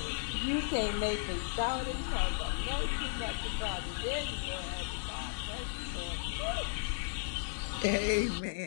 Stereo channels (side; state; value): right; silent; digital silence